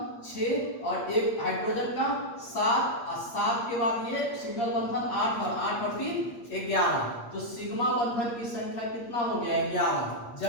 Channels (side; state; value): right; late; 8.5 ms